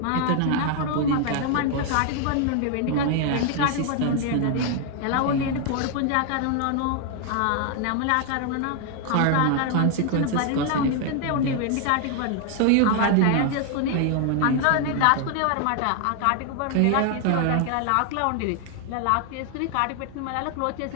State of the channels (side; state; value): both; different; correlation 0.00